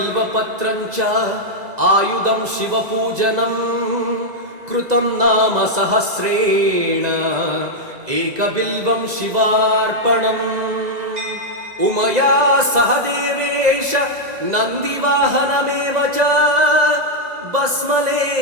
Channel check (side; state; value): left; late; 2.0 ms